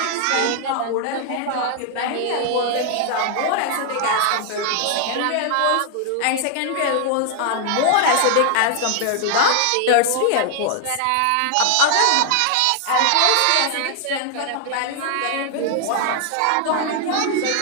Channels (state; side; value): different; both; correlation 0.00